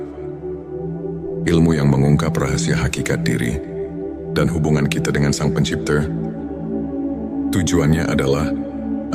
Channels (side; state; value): both; identical; correlation 1.00